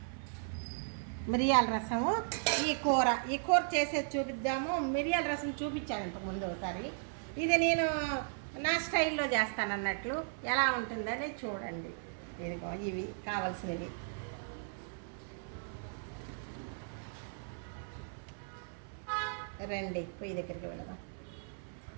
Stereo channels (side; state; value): left; silent; 54 dB below the other